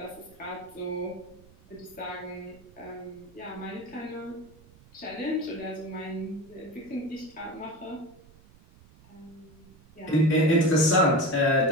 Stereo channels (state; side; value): noise; right; rumble, 25 dB below the sound